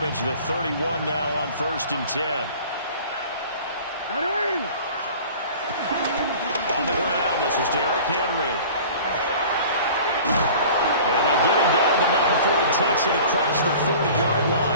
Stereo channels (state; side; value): inverted; both; correlation -0.43